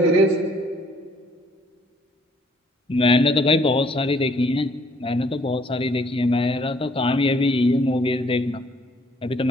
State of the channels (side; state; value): both; normal; correlation 0.62